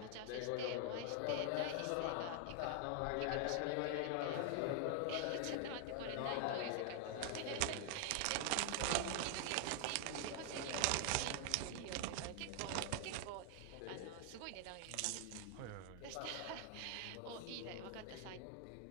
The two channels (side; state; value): both; different; correlation 0.00